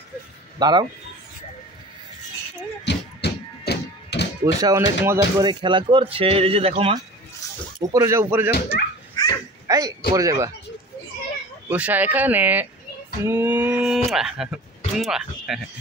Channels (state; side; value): normal; both; correlation 0.39